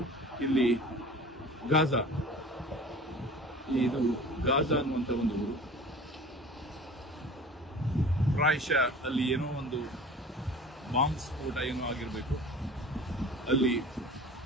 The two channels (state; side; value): normal; both; correlation 0.41